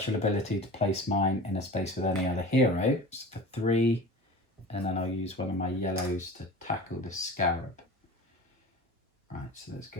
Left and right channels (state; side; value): normal; both; correlation 0.36